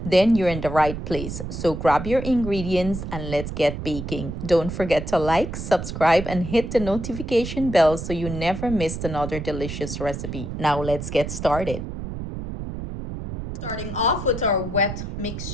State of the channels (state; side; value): noise; right; rumble, 7 dB below the sound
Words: then you're in the right place. So grab your ingredients and let's get baking. Don't forget to like, subscribe, and hit the notification bell so you never miss another delicious recipe. Now let's get started. Starting off with our wet